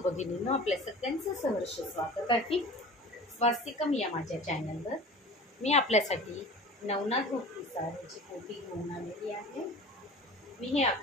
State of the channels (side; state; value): both; normal; correlation 0.39